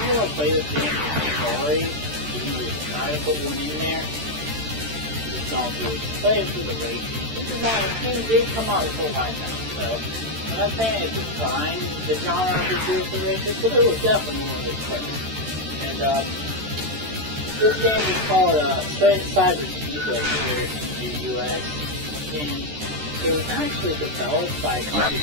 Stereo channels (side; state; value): left; late; 13 ms